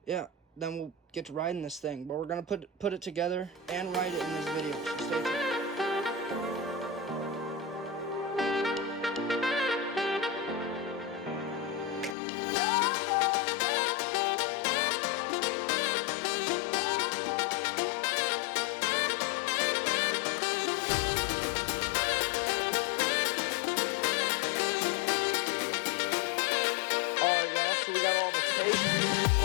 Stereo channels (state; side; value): drops out; right; at 12.2 s